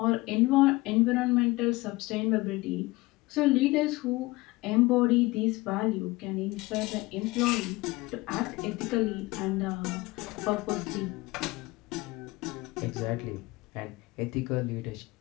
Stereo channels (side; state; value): right; quieter; 21.5 dB